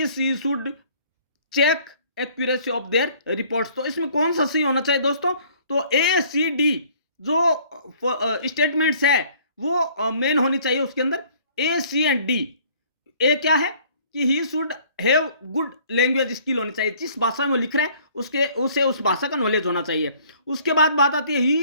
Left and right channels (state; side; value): inverted; both; correlation -0.56